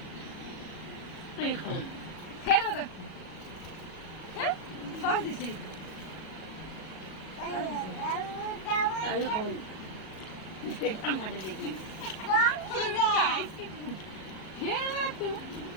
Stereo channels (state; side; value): late; right; 37 ms